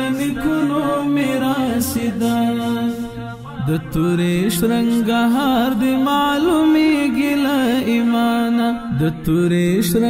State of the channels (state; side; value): identical; both; correlation 1.00